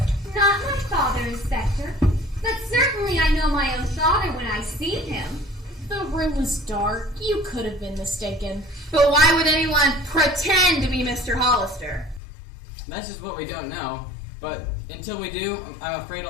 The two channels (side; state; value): right; drops out; at 12.2 s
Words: Not my father, Inspector. But certainly I know my own father when I see him. The room was dark. You could have been mistaken. But why would anyone pretend to be Mr. Hollister? That's just what we don't know. But until we do, I'm afraid